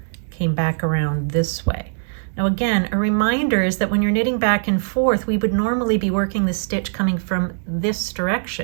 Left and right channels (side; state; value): left; silent; 65 dB below the other